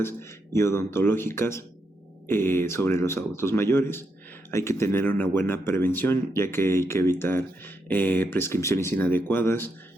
y odontológicas sobre los adultos mayores. Hay que tener una buena prevención, ya que hay que evitar prescripciones inadecuadas,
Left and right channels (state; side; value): normal; both; correlation 0.81